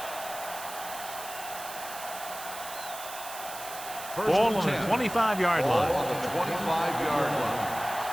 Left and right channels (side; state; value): right; noise; hiss, 11 dB below the sound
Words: Ball on the 25-yard line. On the 25-yard line.